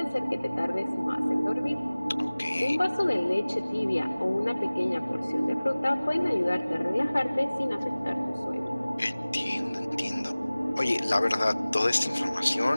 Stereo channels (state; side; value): inverted; both; correlation -0.99